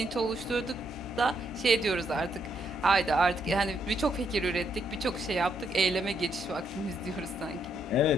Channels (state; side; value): normal; both; correlation 0.75